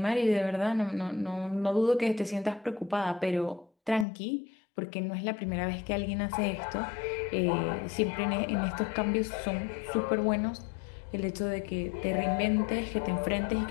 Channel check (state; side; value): drops out; right; at 4.0 s